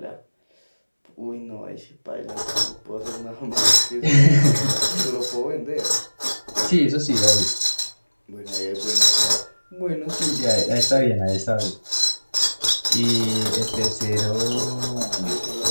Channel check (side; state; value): both; inverted; correlation -1.00